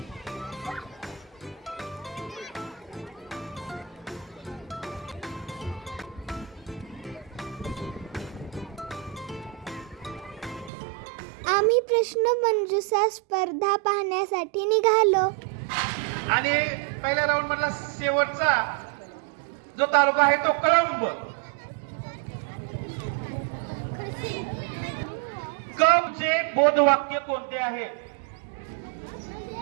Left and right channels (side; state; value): left; drops out; at 10.7 s